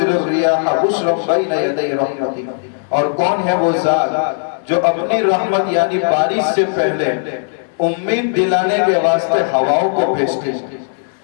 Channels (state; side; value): silent; right; digital silence